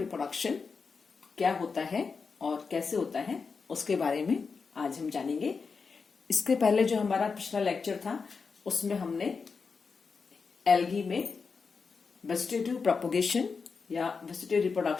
क्या होता है और कैसे होता है उसके बारे में आज हम जानेंगे। इसके पहले जो हमारा पिछला लेक्चर था उसमें हमने एल्गी में वेजिटेटिव प्रोपगेशन या वेजिटेटिव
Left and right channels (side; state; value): right; quieter; 5.1 dB